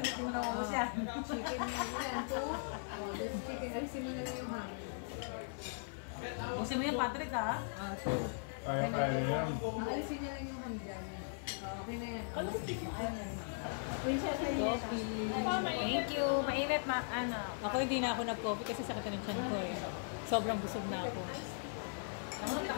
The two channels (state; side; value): silent; right; 52 dB below the other